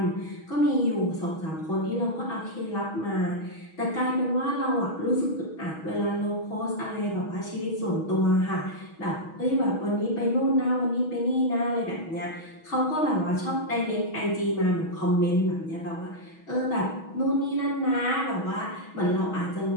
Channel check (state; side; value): late; right; 6.2 ms